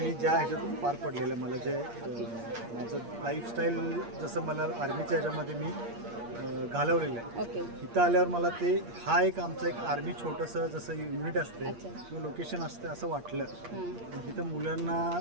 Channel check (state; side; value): late; left; 8.6 ms